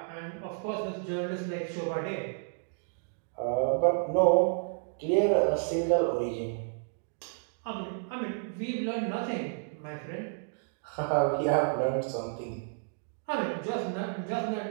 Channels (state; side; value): silent; left; digital silence